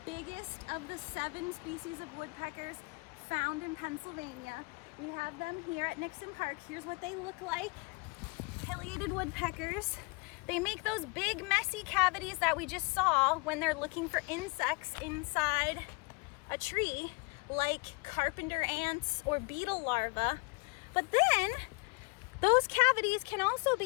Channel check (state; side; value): quieter; right; 29.7 dB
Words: biggest of the 7 species of woodpeckers found in Pennsylvania. We have them here at Nixon Park. Here's what they look like. Pileated woodpeckers. They make those big messy cavities that we just saw when they're looking for insects inside a tree, like carpenter ants or beetle larvae. But then those cavities can also